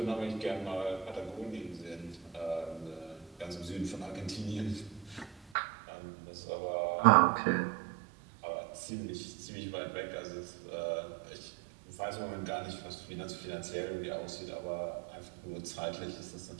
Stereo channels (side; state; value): left; drops out; at 5.4 s